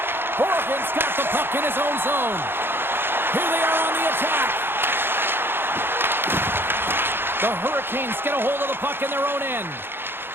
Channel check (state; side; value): late; left; 0.10 ms